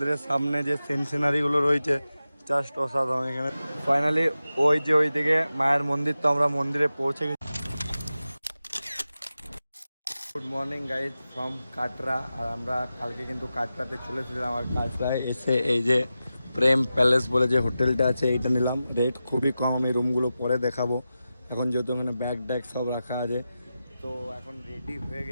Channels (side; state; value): both; inverted; correlation -0.93